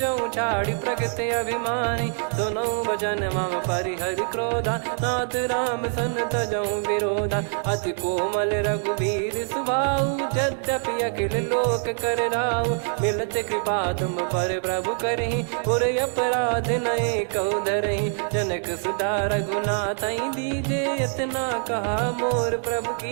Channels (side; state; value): left; silent; 55 dB below the other